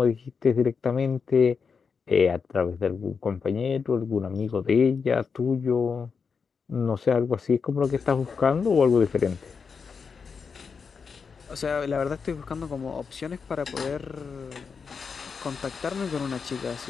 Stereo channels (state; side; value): quieter; right; 5.6 dB